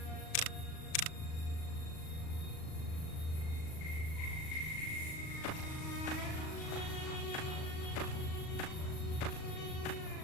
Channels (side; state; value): right; late; 38 ms